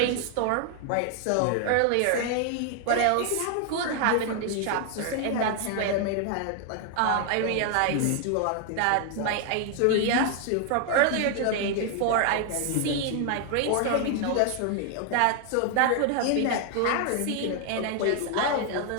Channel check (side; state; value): both; different; correlation 0.00